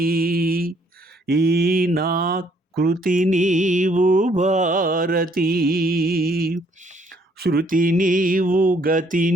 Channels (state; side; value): normal; both; correlation 0.66